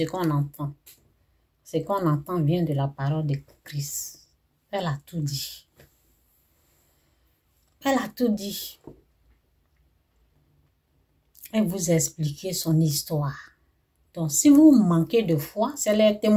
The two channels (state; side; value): identical; both; correlation 1.00